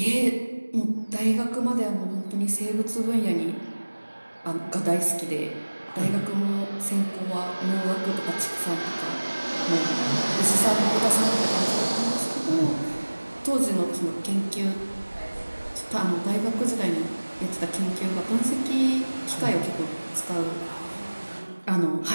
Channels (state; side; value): inverted; both; correlation -1.00